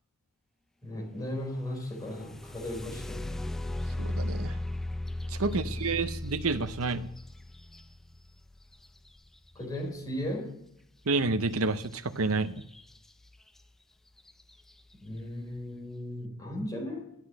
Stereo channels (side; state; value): both; normal; correlation 0.43